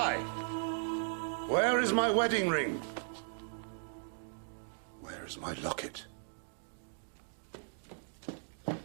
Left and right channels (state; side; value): silent; left; digital silence